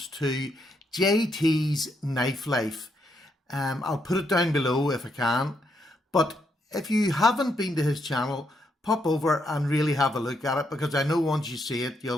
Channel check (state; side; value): normal; both; correlation 0.77